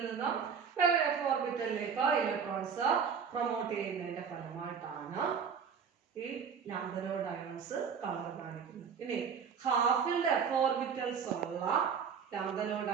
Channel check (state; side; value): quieter; left; 6.6 dB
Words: നിന്നും വേറെ F ഓർബിറ്റലിലേക്ക് ഇലക്ട്രോൺസ് പ്രൊമോട്ട് ചെയ്യുന്നതിന്റെ ഫലമായിട്ടാണ് ഈ ലാന്തനോയിഡ് അയോൺസ് കളർ കാണിക്കുന്നത്. ഇനി ഹാഫ് ഫിൽഡ് F ഓർബിറ്റൽസ് ഉള്ള ലാന്തനോയിഡ്